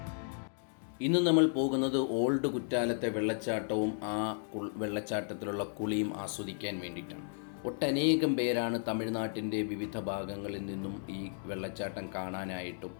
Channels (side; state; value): right; silent; digital silence